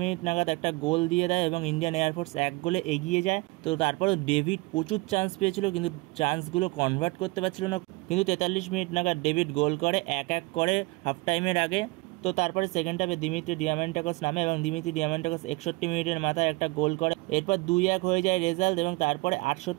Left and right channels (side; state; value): left; quieter; 24.2 dB